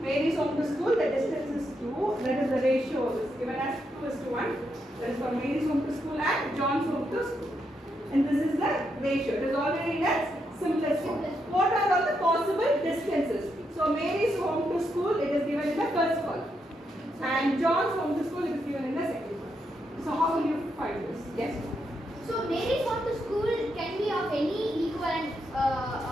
Mary's home to school, the distance is 2. That is the ratio is given as 2:1. That is for Mary's home to school and John's home to school. And this is the ratio. It is already in its simplest form. What are all the possible distances? So Mary's home to school, it is given in the first column. And John's home to school, it is given in the second column. So how will you find this? Yes? so Mary's home to school can be of any equivalent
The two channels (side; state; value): both; normal; correlation 0.81